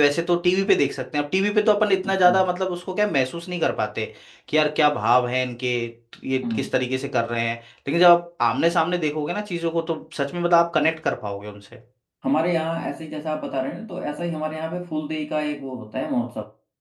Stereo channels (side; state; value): both; identical; correlation 1.00